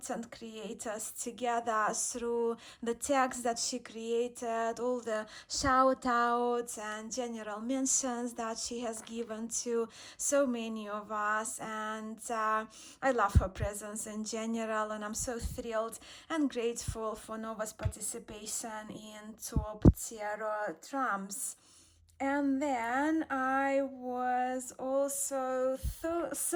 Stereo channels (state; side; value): identical; both; correlation 1.00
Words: creators together through the tags that she created, all the shout outs and general mentions that she has given to so many of us. And I love her presence in general, and I'm so thrilled and grateful for Nova's participation in top tarot trumps. And then I was also